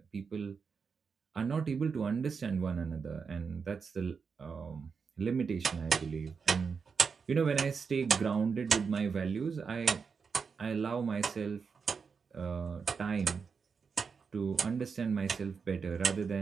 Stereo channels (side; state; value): left; quieter; 5.6 dB